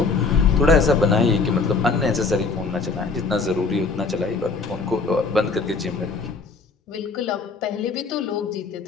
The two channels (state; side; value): quieter; right; 4.3 dB